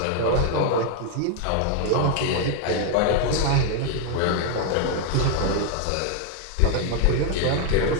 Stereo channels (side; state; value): both; different; correlation 0.01